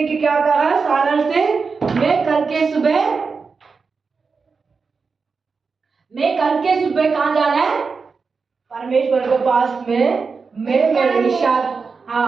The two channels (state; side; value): quieter; left; 4.9 dB